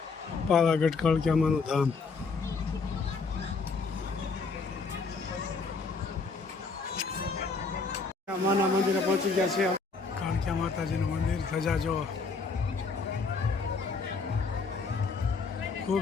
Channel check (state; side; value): quieter; right; 4.5 dB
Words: પાવાગઢ કળકિયામાનું ધામ. માના મંદિરે પહોંચી ગયા છે. કાળકિયા માતાજીનું મંદિર ધજા જો